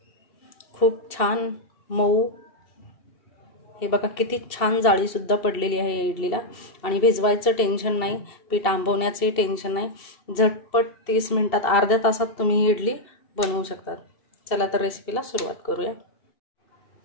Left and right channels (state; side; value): late; right; 2.7 ms